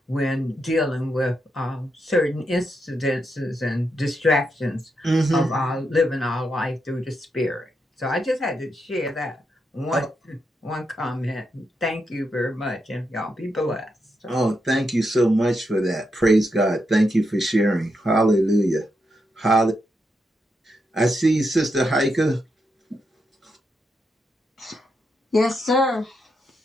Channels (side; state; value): both; normal; correlation 0.83